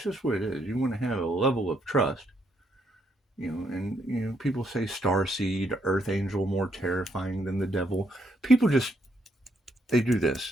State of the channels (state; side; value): normal; both; correlation 0.74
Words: just what it is. You want to have a level of trust, and people say starseed, earth angel, more terrifying than the devil. People just, they do this.